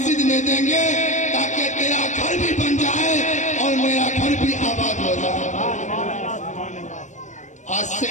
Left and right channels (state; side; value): late; right; 0.35 ms